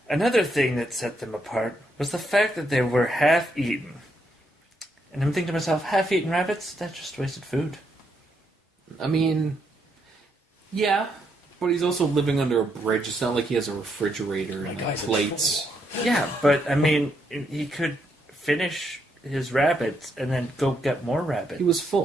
Another thing that set them apart was the fact that they were half-eaten. And I'm thinking to myself, half-eaten rabbits? That's just wasted food. I mean, yeah. But he's also living under a bridge. It's not like he has a refrigerator and plates. Yeah, but I mean, he could finish his rabbits and then go get more rabbits. He was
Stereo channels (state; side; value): normal; both; correlation 0.77